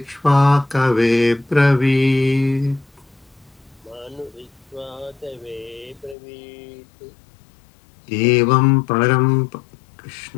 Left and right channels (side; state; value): right; drops out; at 6.2 s